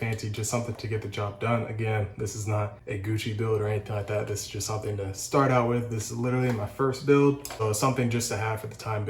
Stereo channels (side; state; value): both; identical; correlation 1.00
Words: just something to get the job done. Again, this is not a Gucci build or anything like that. This is just something to start out with. This is literally my first build, so it's something just to have for the time